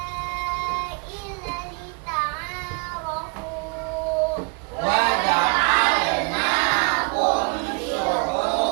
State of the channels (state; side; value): quieter; left; 36.1 dB